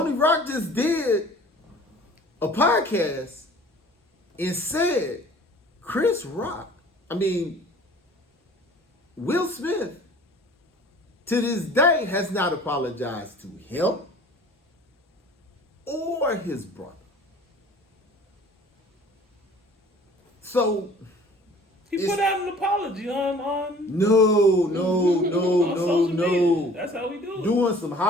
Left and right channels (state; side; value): normal; both; correlation 0.49